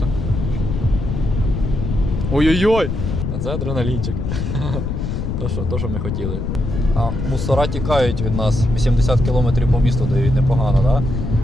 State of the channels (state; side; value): noise; left; rumble, 3 dB below the sound